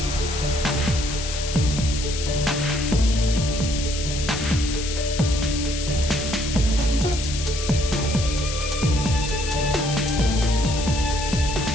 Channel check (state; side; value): noise; left; hiss, 7 dB below the sound